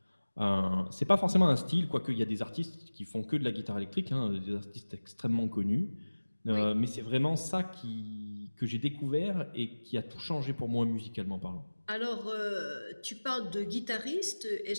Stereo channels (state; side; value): inverted; both; correlation -1.00